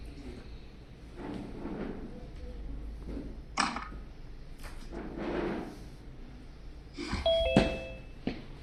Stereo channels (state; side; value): identical; both; correlation 1.00